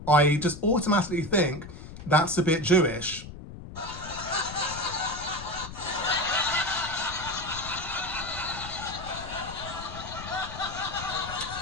I just automatically think that's a bit Jewish.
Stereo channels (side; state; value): left; noise; rumble, 12 dB below the sound